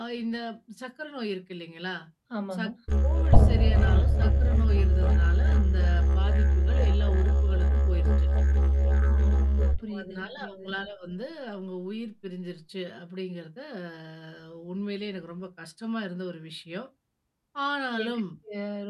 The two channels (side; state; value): both; identical; correlation 1.00